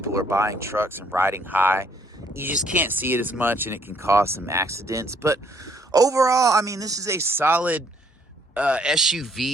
are buying trucks and riding high. You just can't see it as much, and it can cause some accidents. But overall, I mean, this is a solid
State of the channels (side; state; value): both; normal; correlation 0.65